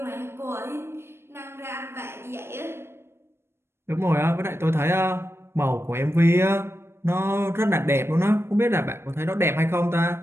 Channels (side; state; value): left; late; 0.12 ms